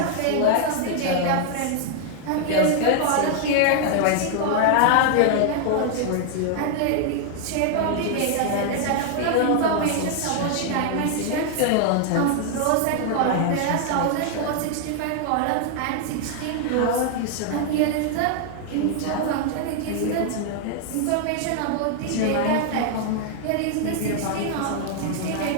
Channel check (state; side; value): different; both; correlation 0.00